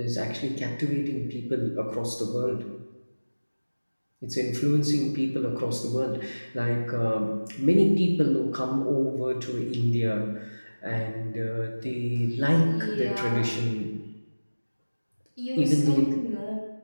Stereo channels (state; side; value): inverted; both; correlation -1.00